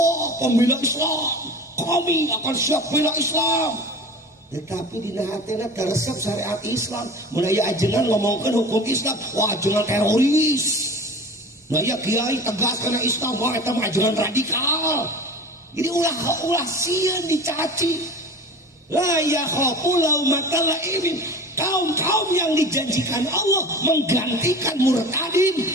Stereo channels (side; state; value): both; normal; correlation 0.37